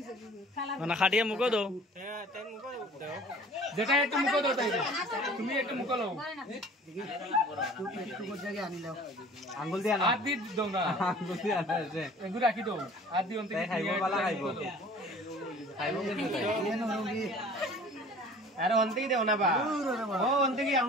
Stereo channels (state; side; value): normal; both; correlation 0.48